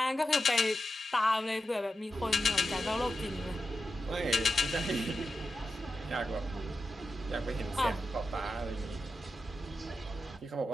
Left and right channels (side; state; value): both; normal; correlation 0.89